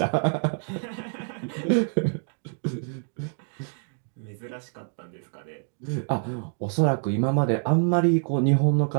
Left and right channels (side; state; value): left; silent; 61 dB below the other